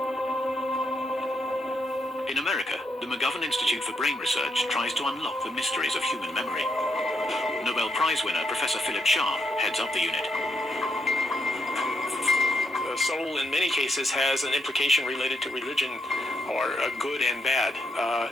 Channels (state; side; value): normal; both; correlation 0.79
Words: In America, the McGovern Institute for Brain Research tries to unlock the mysteries of human memory. Nobel Prize winner Professor Philip Shah heads up the unit. The soul, in many cases, has an implication related to religion, or good and bad,